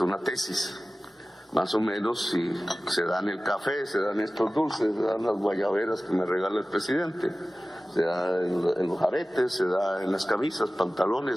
una tesis. Más o menos, si se dan el café, se dan estos dulces, se dan las guayaberas que me regala el presidente, se da en los aretes, se da en las camisas,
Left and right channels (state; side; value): normal; both; correlation 0.97